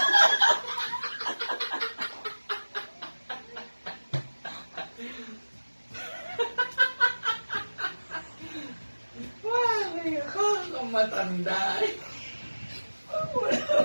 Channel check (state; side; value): inverted; both; correlation -1.00